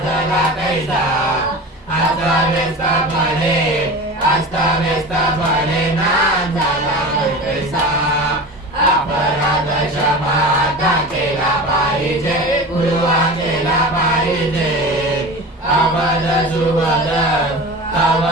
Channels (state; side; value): normal; both; correlation 0.32